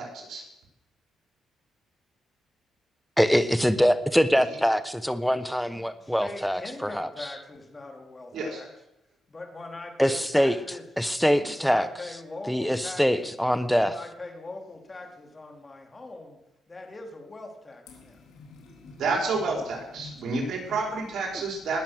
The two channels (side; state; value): both; normal; correlation 0.94